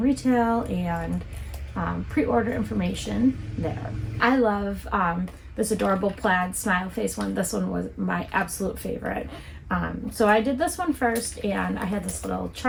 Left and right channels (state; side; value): identical; both; correlation 1.00